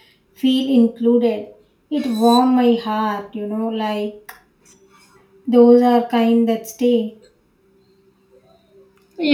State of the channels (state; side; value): identical; both; correlation 1.00